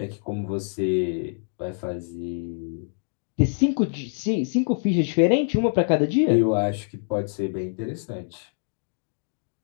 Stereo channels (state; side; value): silent; right; digital silence